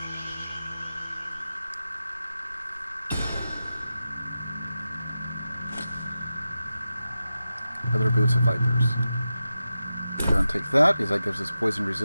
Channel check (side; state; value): both; inverted; correlation -0.92